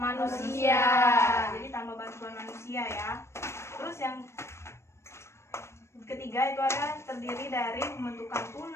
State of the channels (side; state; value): right; late; 0.13 ms